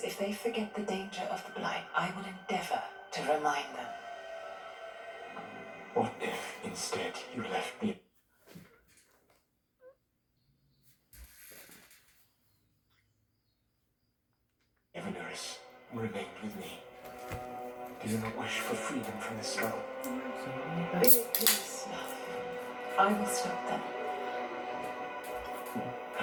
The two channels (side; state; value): both; identical; correlation 1.00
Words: If they forget the danger of the Blight, I will endeavor to remind them. What if, instead, you left me? Evenuris remained with me. Do you not wish for freedom from this spell? Be at peace, love. I will stop them.